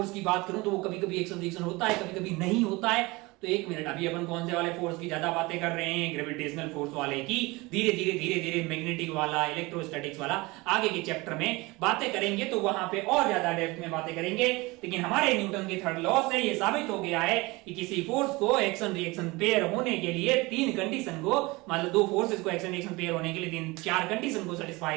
की बात करूं तो वो कभी कभी एक्शन रिएक्शन होता है, कभी कभी नहीं होता है। तो एक मिनट, अभी अपन कौन से वाले फोर्स की ज्यादा बातें कर रहे हैं, ग्रेविटेशनल फोर्स वाले की। धीरे धीरे मैग्नेटिक वाला, इलेक्ट्रोस्टैटिक्स वाला आगे के चैप्टर में बातें करेंगे, तो वहां पे और ज्यादा डेप्थ में बातें करेंगे। लेकिन हमारे न्यूटन के थर्ड लॉ से ये साबित हो गया है कि किसी फोर्स को एक्शन रिएक्शन पेयर होने के लिए तीन कंडीशन को, मतलब दो फोर्सेस को एक्शन रिएक्शन पेयर होने के लिए तीन चार कंडीशन को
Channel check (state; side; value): quieter; left; 23.2 dB